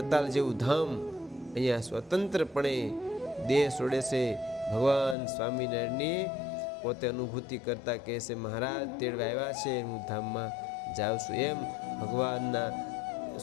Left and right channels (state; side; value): drops out; right; at 5.2 s